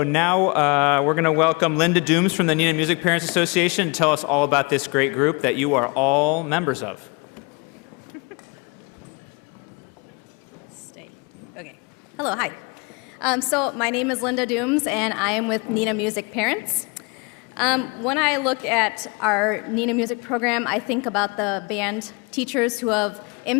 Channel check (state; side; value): quieter; right; 30.2 dB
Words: now we're going to welcome Linda Dooms from the Neenah Music Parents Association to tell us all about this great group that you are all members of. Stay. Okay. Hello, hi. So my name is Linda Dooms, and I am with Neenah Music Parents. When I look at our Neenah Music program, I think about the band teachers who have